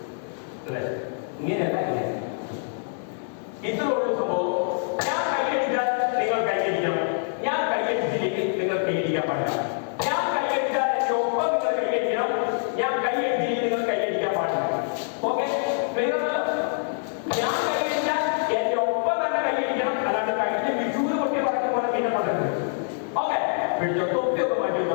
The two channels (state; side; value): silent; right; digital silence